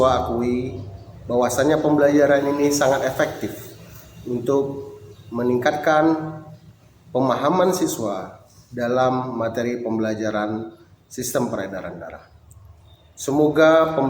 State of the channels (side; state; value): both; identical; correlation 1.00